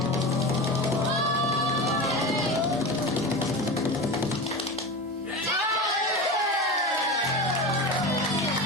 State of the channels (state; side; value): normal; both; correlation 0.26